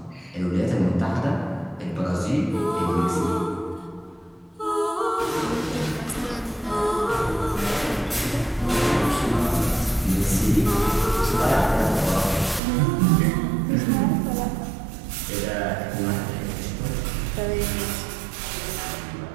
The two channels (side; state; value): left; drops out; at 12.6 s